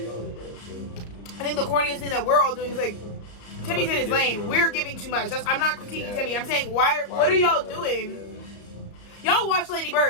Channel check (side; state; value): right; late; 34 ms